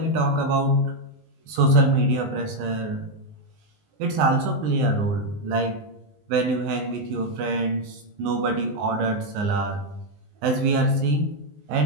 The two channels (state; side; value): late; left; 19 ms